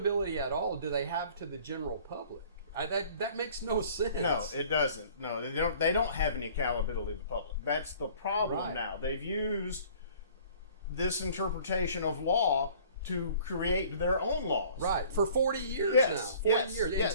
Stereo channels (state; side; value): inverted; both; correlation -0.51